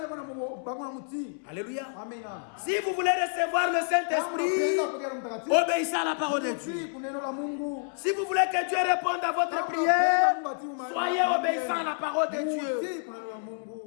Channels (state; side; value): silent; right; 59 dB below the other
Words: Alléluia. Si vous voulez recevoir le Saint-Esprit, obéissez à la parole de Dieu. Si vous voulez que Dieu réponde à votre prière, soyez obéissants à la parole de Dieu.